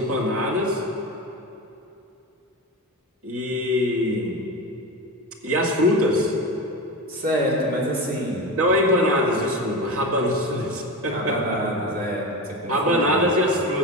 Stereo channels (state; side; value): normal; both; correlation 0.23